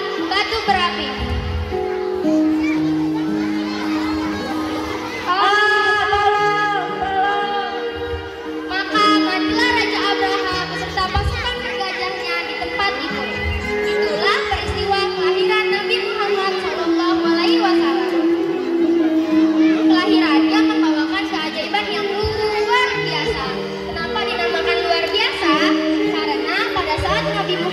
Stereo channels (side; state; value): both; identical; correlation 1.00